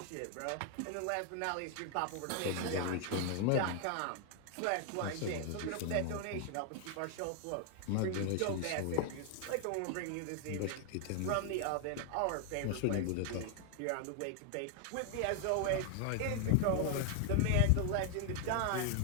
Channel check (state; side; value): different; both; correlation 0.00